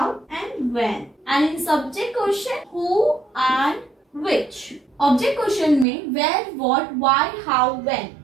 and when. And in subject question, who and which. Object question में where, what, why, how, when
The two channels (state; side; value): drops out; left; at 5.9 s